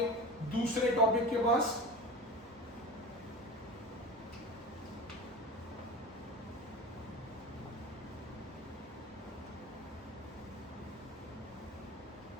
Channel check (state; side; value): normal; both; correlation 0.33